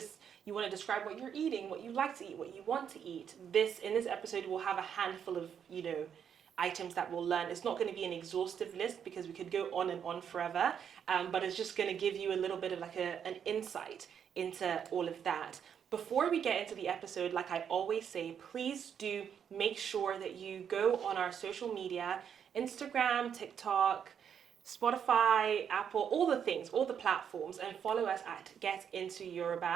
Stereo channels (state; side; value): quieter; left; 8.1 dB